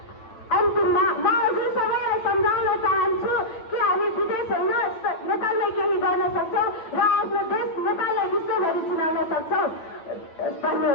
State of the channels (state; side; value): late; right; 9.0 ms